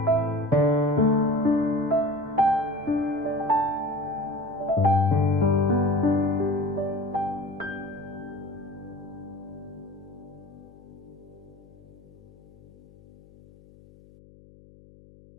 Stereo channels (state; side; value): noise; left; hum, 24 dB below the sound